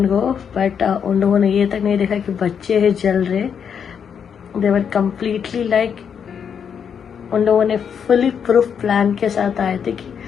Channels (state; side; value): quieter; right; 7.4 dB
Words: go, but उन लोगों ने ये तक नहीं देखा कि बच्चे हैं जल रहे। दे वर कम्प्लीटली लाइक, उन लोगों ने फुली प्रूफ प्लान के साथ आए थे कि